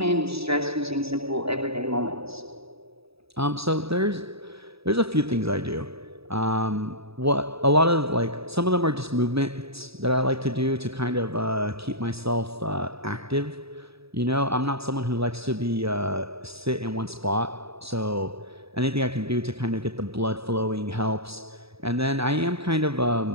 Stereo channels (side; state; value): left; late; 0.77 ms